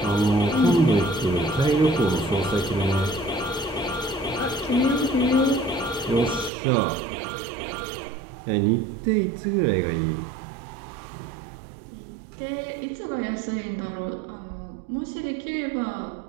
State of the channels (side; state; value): left; drops out; at 6.5 s